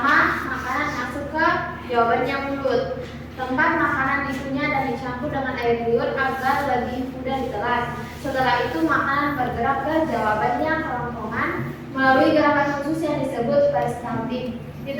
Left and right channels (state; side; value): identical; both; correlation 1.00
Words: makanan masuk ke jawabannya mulut. Tempat makanan dikunyah dan dicampur dengan air liur agar lebih mudah ditelan. Setelah itu makanan bergerak ke jawabannya kerongkongan melalui gerakan khusus yang disebut peristaltik. Di